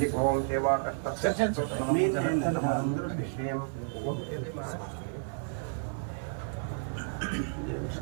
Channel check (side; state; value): left; silent; digital silence